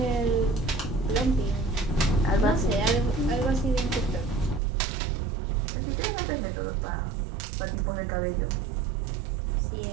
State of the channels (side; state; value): left; drops out; at 4.6 s